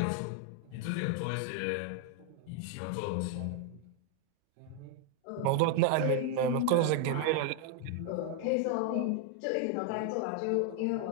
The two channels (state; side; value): different; both; correlation 0.01